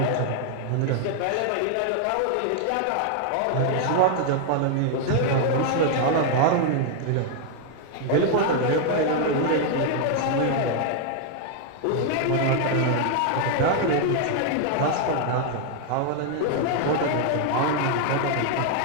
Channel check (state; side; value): different; both; correlation 0.00